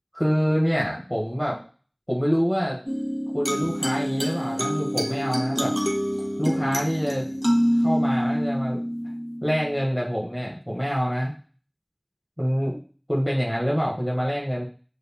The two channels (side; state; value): both; identical; correlation 1.00